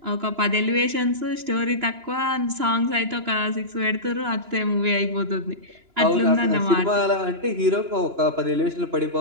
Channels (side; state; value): left; late; 2.9 ms